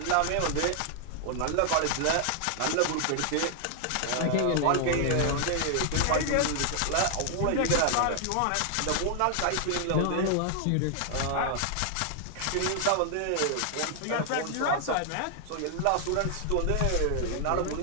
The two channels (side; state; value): both; different; correlation 0.00